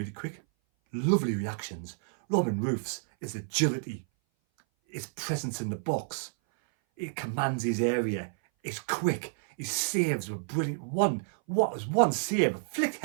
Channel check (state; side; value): silent; left; 57 dB below the other